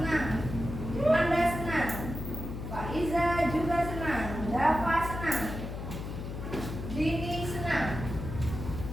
Anda senang, Faiza juga senang, Dava senang, Dini senang,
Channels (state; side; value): noise; left; hum, 7 dB below the sound